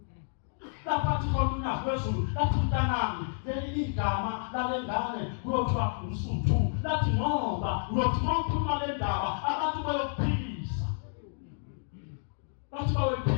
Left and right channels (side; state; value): right; silent; digital silence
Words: Laphathi khona unyazi lwezulu lathi mntanami leli igama lalengane kuyothiwa umsuthu lathi ngoba uyothi mawukhuluma le ndaba abantu bayokuphilisa. Bathi